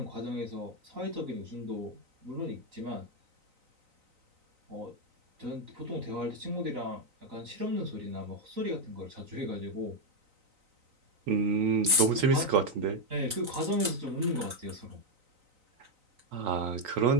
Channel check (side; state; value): left; late; 3.9 ms